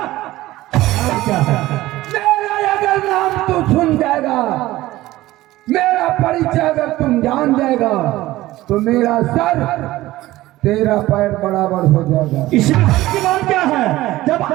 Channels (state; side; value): quieter; left; 16.9 dB